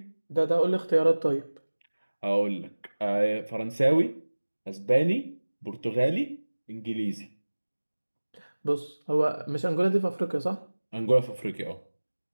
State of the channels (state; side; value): inverted; both; correlation -1.00